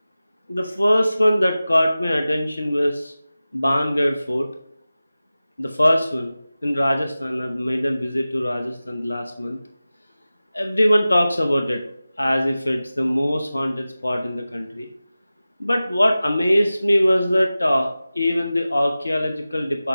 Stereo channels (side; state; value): both; inverted; correlation -0.96